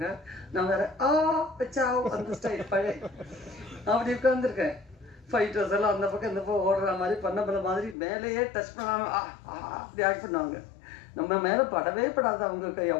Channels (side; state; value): right; drops out; at 8.0 s